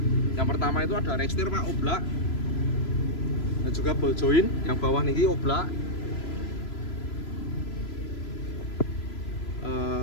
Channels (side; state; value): right; late; 3.0 ms